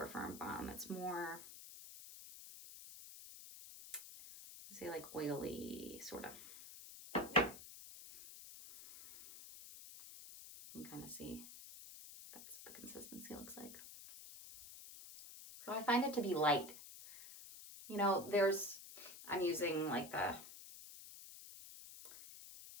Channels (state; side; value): noise; left; hiss, 14 dB below the sound